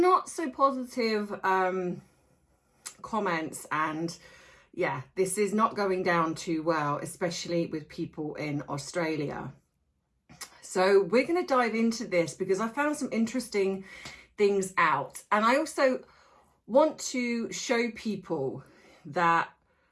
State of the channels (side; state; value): both; identical; correlation 1.00